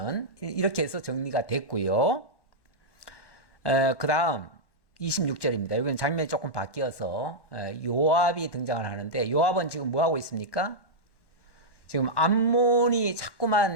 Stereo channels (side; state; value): right; late; 1.1 ms